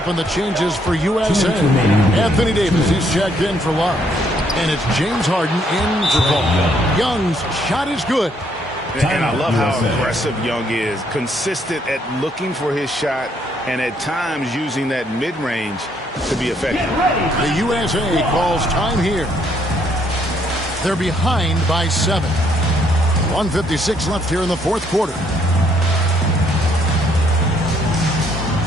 on the changes for USA. Anthony Davis, he's checked in for Love. And it's James Harden in for Paul. Young's shot is good. And I love how aggressive Young is. Consistent at looking for his shot and at times using that mid-range to be effective. The USA calls time here. They're behind by 7. 1:56 left here in the fourth quarter.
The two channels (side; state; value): both; normal; correlation 0.69